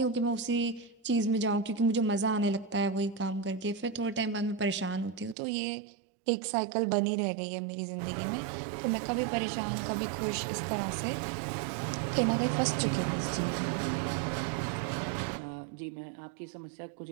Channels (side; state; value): left; drops out; at 5.4 s